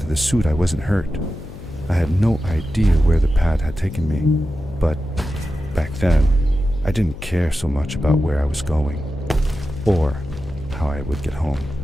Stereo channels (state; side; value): noise; left; hum, 15 dB below the sound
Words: the suit I wasn't hurt. I had no idea where the pad had taken me, but back then I didn't care so much about where I was going or how I would get home.